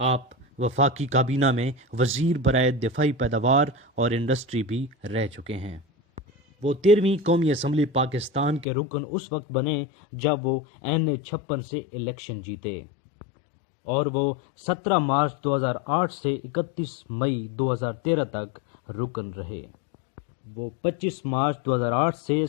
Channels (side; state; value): right; drops out; at 8.7 s